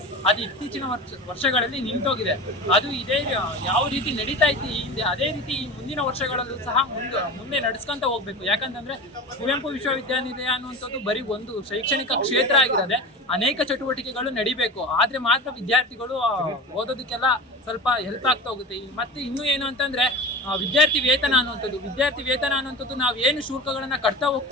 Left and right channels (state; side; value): normal; both; correlation 0.30